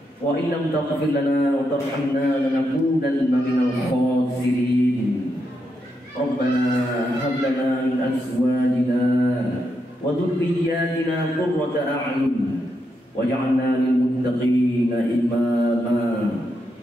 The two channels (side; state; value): both; normal; correlation 0.82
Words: وإن لم تغفر لنا وترحمنا لنكونن من الخاسرين. ربنا هب لنا من أزواجنا وذرياتنا قرة أعين واجعلنا للمتقين إماما.